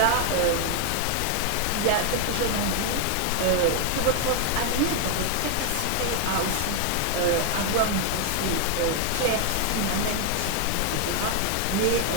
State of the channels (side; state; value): both; different; correlation 0.00